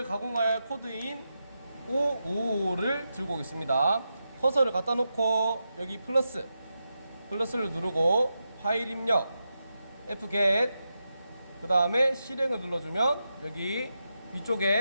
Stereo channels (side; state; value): both; inverted; correlation -0.88